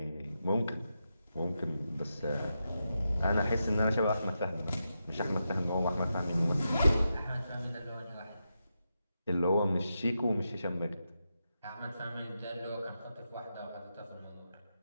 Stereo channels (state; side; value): inverted; both; correlation -0.87